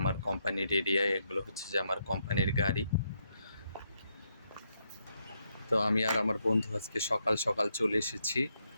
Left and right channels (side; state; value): both; inverted; correlation -0.78